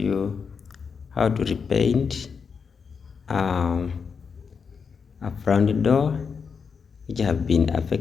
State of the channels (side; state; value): right; quieter; 5.9 dB